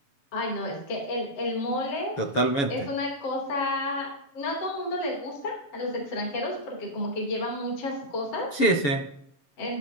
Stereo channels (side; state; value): right; late; 7.1 ms